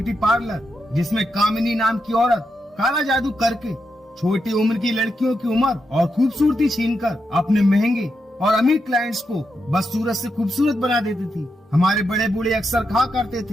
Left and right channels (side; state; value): both; normal; correlation 0.85